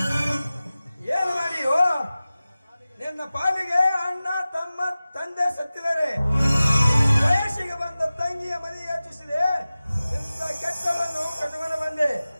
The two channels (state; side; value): inverted; both; correlation -0.97